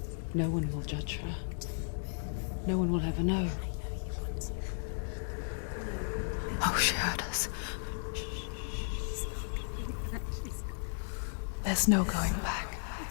No one will judge her. No one will ever know. Oh, she heard us. There's no going back.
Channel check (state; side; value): silent; right; digital silence